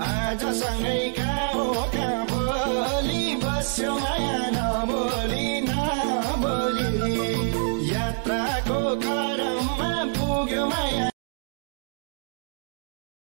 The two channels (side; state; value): left; silent; digital silence